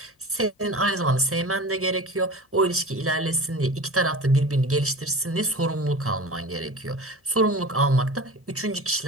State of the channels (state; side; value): normal; both; correlation 0.35